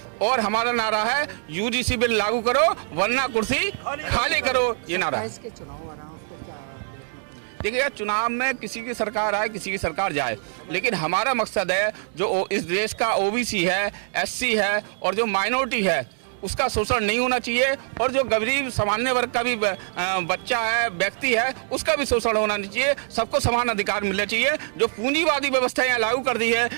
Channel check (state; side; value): silent; left; 63 dB below the other